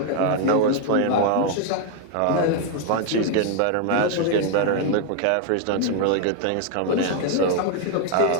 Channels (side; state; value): both; different; correlation 0.00